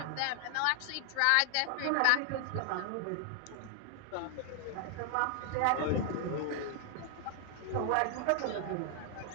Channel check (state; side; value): different; both; correlation 0.00